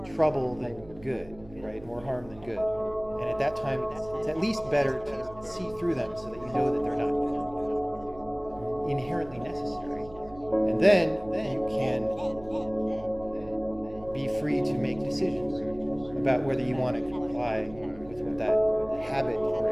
trouble than good, right? More harm than good. And at that time, it's at least better to see through them so that you know that they're not inherently necessary. And then you can be free to make decisions about whether you want to comply with what that habit or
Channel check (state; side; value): noise; right; hum, 21 dB below the sound